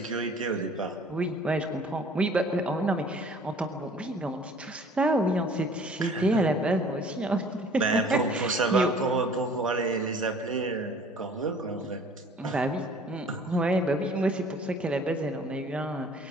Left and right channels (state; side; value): normal; both; correlation 0.52